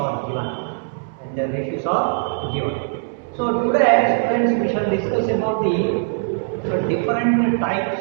given. When their ratios are given. So today, students, we shall discuss about the different types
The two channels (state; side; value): silent; left; digital silence